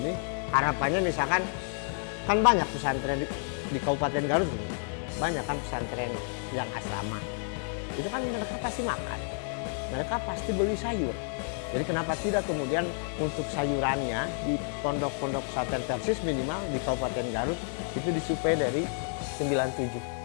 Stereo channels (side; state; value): right; silent; 58 dB below the other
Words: harapannya misalkan kan banyak pesantren di Kabupaten Garut ini. Banyak kan pesantren yang asrama. Itu kan mereka pasti makan. Mereka pasti beli sayur. Jadi kenapa tidak kemudian untuk sayurannya di pondok-pondok pesantren Persis minimal di Kabupaten Garut itu disuplai dari 97.